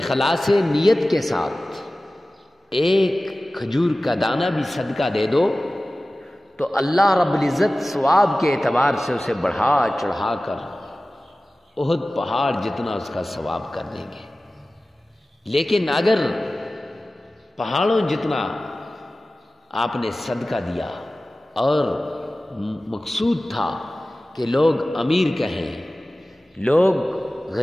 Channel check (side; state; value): both; normal; correlation 0.97